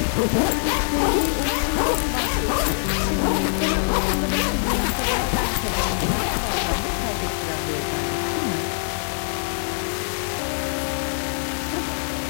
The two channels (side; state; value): right; silent; digital silence